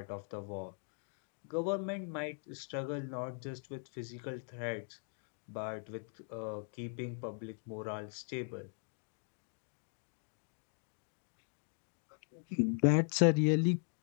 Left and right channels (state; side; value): silent; right; 51 dB below the other